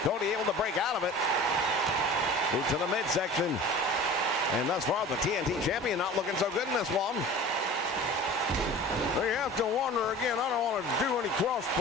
Cody able to break out of it. Move to the midsection. And thus far, the TNT champion not looking so good in this one. You have to wonder again, I don't want to do any cross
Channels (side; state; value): both; normal; correlation 0.39